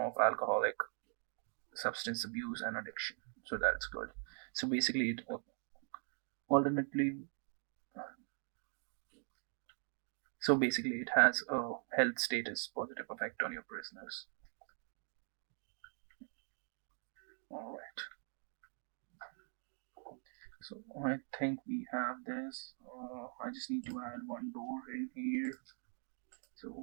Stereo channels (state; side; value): silent; left; 50 dB below the other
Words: alcoholic substance abuse and addiction. So that's good. So basically, it alternatively, it has a health status positive effect on your prisoners. All right. So I think we have this. I just need to add one door in here. So